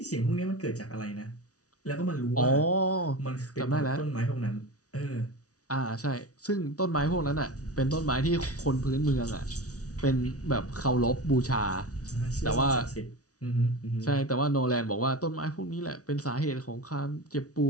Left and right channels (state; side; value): late; right; 0.67 ms